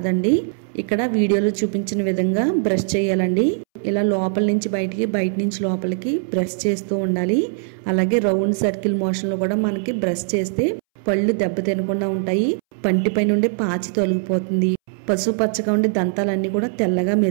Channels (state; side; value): silent; left; 65 dB below the other